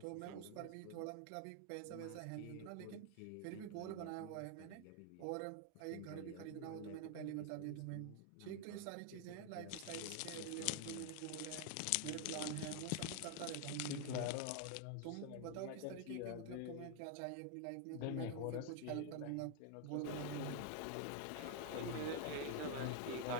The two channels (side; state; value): both; different; correlation 0.00